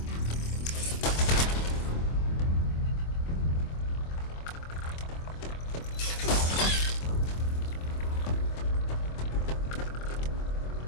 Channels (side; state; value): right; late; 25 ms